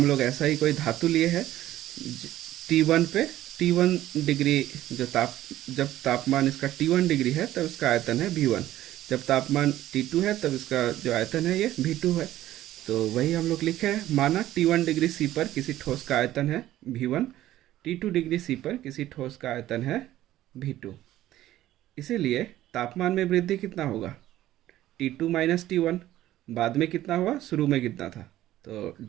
लोग ऐसा ही कोई धातु लिए है, T1 पे T1 डिग्री जब तापमान इसका T1 डिग्री है तब इसका आयतन है V1, जब तापमान T2 है तब इसका जो आयतन है ये V2 है। तो वही हम लोग लिखे हैं, माना T1 डिग्री C पर किसी ठोस का आयतन है V1, T2 डिग्री C पर किसी ठोस का आयतन है V2। इसीलिए तापमान में वृद्धि कितना होगा, T2 माइनस T1, बाद में कितना हुआ, शुरू में कितना था, तो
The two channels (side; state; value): left; quieter; 14.1 dB